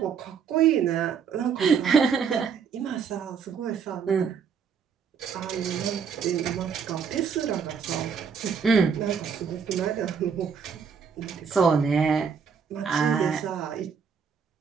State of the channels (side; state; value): left; quieter; 6.4 dB